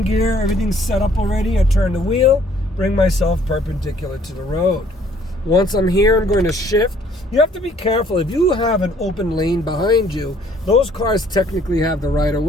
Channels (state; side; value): normal; both; correlation 0.60